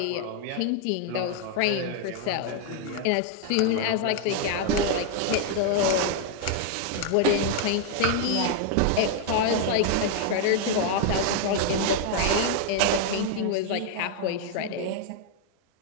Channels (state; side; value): different; both; correlation 0.00